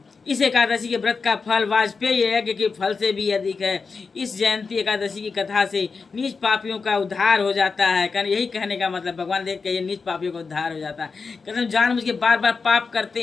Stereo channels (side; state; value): right; quieter; 4.8 dB